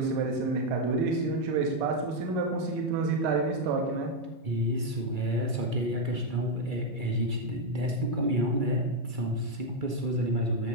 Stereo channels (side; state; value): left; late; 2.3 ms